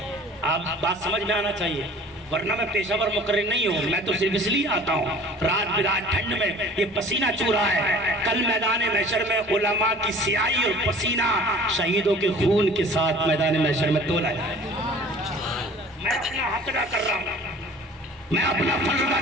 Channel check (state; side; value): normal; both; correlation 0.47